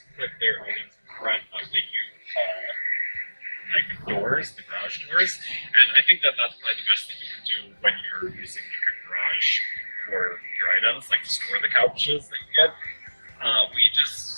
put their items in front of the U-Haul doors, the garage doors, and I think that that's probably the best thing you can do when you're using like a garage for your items, like to store the couches that you get. We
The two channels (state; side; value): inverted; both; correlation -1.00